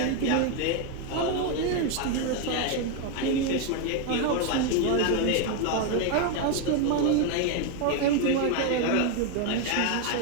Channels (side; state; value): both; different; correlation 0.01